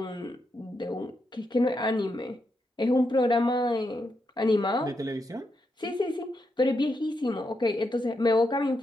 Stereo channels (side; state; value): both; normal; correlation 0.83